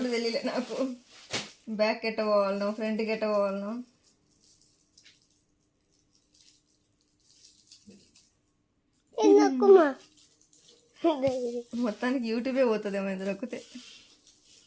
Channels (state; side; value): identical; both; correlation 1.00